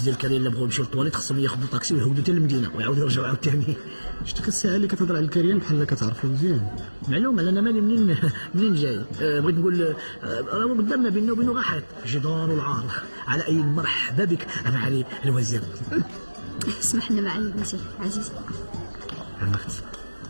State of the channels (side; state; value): both; inverted; correlation -1.00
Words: الكريم اللي بغاو يمشيو للطواليت خصهم ياخذوا طاكسي ويهودوا حتى للمدينه ويعاودوا يرجعوا عاوتاني؟ شتي الساعه اللي كتهضر على الكريم بحال كتعرفو مزيان. معلوم انا مالي منين جاي. بغيت نقول راه قدامنا بيننا وبينه غاحط جدار والعار. على اي مرحبا بك معالي الوزير. اسمح لنا معالي الوزير عزيز. عمرت